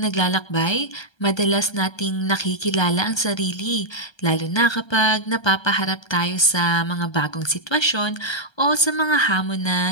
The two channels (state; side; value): late; right; 1.3 ms